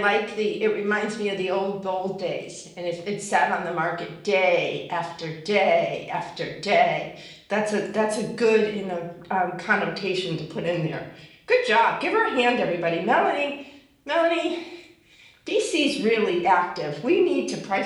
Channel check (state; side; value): identical; both; correlation 1.00